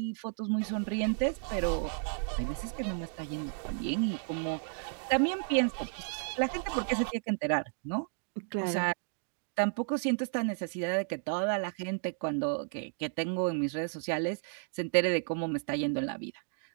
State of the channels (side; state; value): left; silent; 56 dB below the other